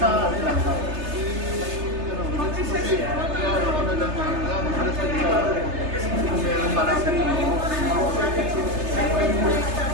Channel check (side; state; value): left; late; 3.3 ms